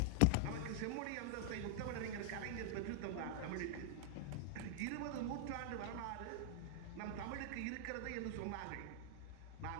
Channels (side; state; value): both; different; correlation -0.01